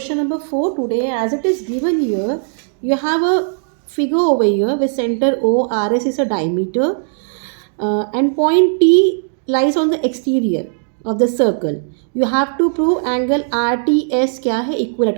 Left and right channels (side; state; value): left; silent; digital silence